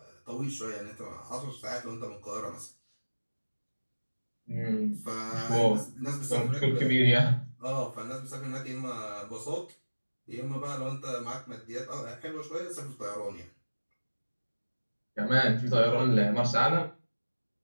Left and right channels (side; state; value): both; inverted; correlation -1.00